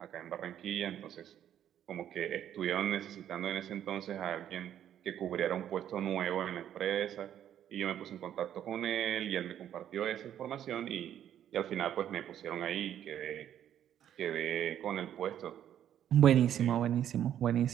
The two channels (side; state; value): left; quieter; 10.4 dB